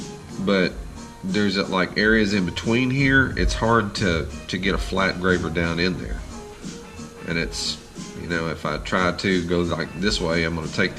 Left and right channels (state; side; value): identical; both; correlation 1.00